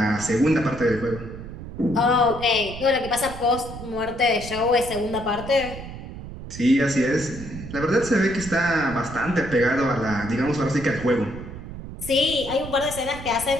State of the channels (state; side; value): noise; right; rumble, 11 dB below the sound